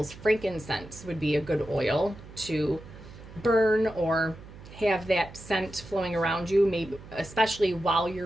frankincense would be a good oil to burn or have that scent flowing around you, maybe especially while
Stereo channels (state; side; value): noise; right; hum, 17 dB below the sound